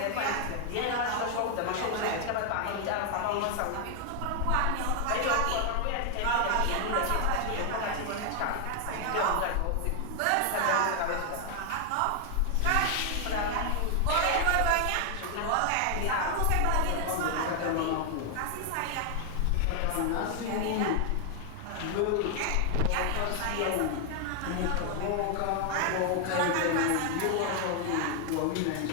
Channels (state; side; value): different; both; correlation 0.00